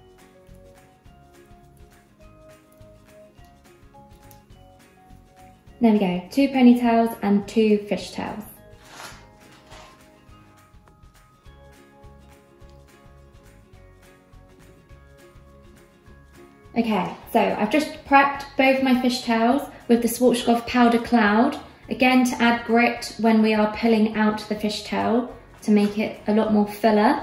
there we go, 2 ponytails and 2 fishtails. Okay, so I've just prepped both my fishtails with the Rozz Powder Cloud, again to add grit when we are pulling out the fishtail to make it a lot more fuller.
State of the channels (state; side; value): identical; both; correlation 1.00